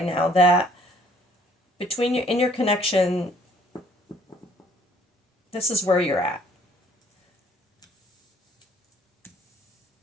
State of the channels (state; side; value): normal; both; correlation 0.60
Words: now. That between your in your connection, this is where you're at.